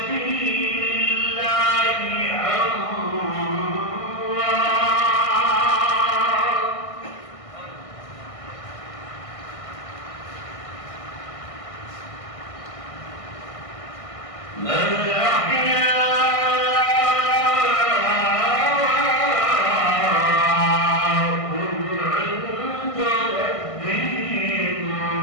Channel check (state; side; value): late; right; 1.6 ms